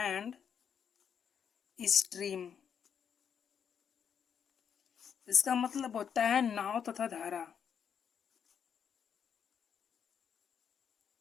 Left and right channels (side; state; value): right; quieter; 7.6 dB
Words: स्ट्रीम। इसका मतलब होता है नाव तथा धारा।